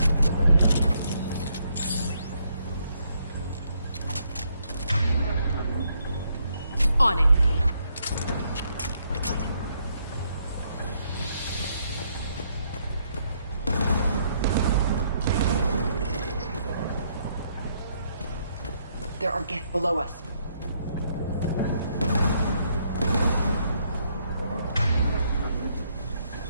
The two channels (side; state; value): both; inverted; correlation -0.72